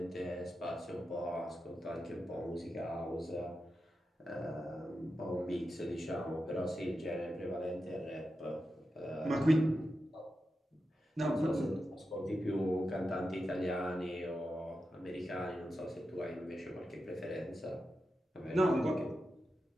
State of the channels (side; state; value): both; normal; correlation 0.90